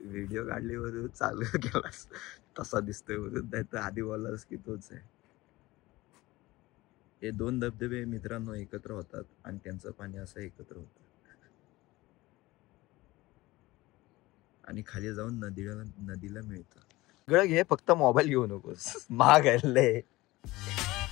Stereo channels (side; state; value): right; quieter; 19.5 dB